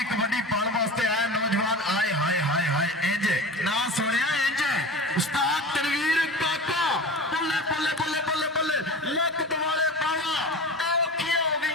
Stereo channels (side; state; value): both; normal; correlation 0.33